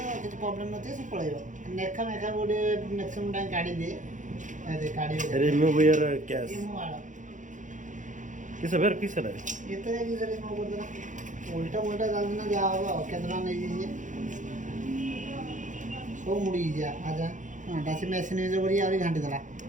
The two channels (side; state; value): left; late; 0.36 ms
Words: କିଛି ପ୍ରୋବ୍ଲେମ୍ ନଥିବ ସେ ପଳେଇବ ନେଖା ମେଖା ଗୋଟେ ମ୍ୟାକ୍ସିମମ୍ ଟାଇମ୍ କାଢ଼ି ଦିଏ କାଢ଼ି रिमूव योर कैश किस बेर किस है ଏତେ ଯାଇକି ସେଠି କ'ଣ କରିଦେଲା ଉଲ୍ଟା ମୁଲ୍ଟା ଚାଲିଛି ନା ଯାହା ହବ ଆଉ କେତେ ଟଙ୍କା ନେଇଯାଇଛି ସବୁ ମୁଡ଼ି ଯା ଆଜା ହଁ ଡାସି ମେସିନ୍ ୟୁଜ୍ କରି ଆହୁରି ଘାଣ୍ଟି ଦେଲା